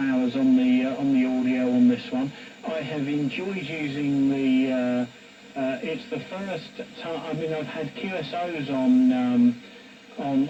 on the audio on this one. I have enjoyed using the. It's the first time. I mean, I've had QSOs on.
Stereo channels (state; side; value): identical; both; correlation 1.00